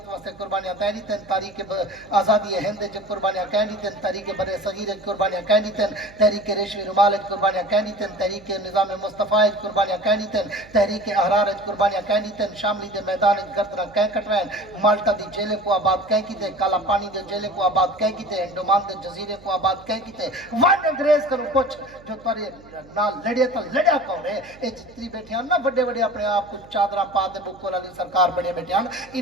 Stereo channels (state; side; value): noise; right; hum, 23 dB below the sound